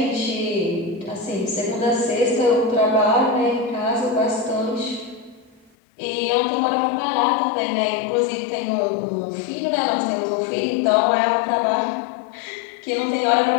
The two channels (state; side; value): drops out; right; at 5.7 s